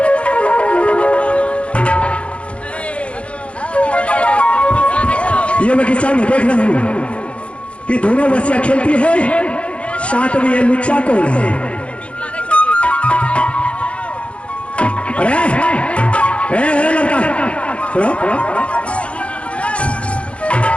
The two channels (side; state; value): right; late; 0.061 ms